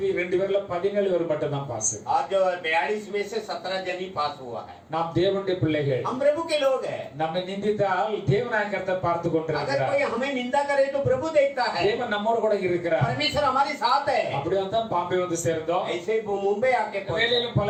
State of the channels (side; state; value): both; identical; correlation 1.00